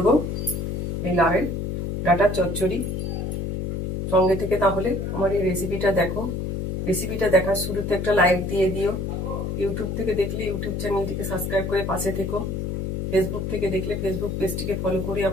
এই লাউয়ের ডাঁটার চচ্চড়ি। সঙ্গে থেকে তাহলে আমার এই রেসিপিটা দেখো। রেসিপিটা দেখার শুরুতে একটা লাইক দিয়ে দিও। ইউটিউব থেকে দেখলে ইউটিউব চ্যানেলটিকে সাবস্ক্রাইব করে পাশে থেকো। ফেসবুক থেকে দেখলে ফেসবুক পেজটিকে ফলো করে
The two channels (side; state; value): left; noise; hum, 2 dB below the sound